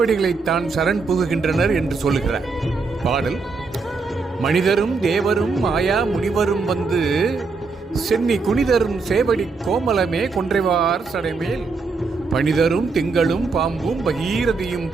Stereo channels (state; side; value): quieter; left; 4.3 dB